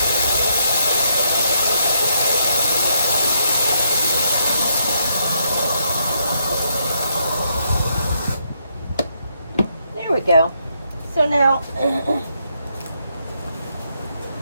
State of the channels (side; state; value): both; inverted; correlation -0.76